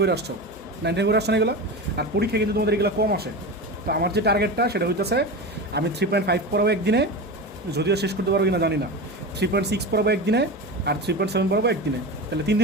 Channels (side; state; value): both; normal; correlation 0.25